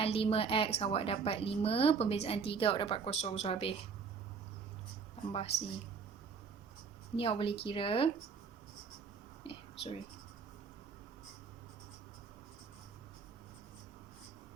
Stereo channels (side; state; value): left; quieter; 5.7 dB